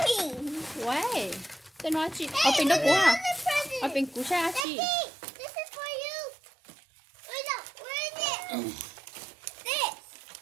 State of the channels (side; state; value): left; drops out; at 4.7 s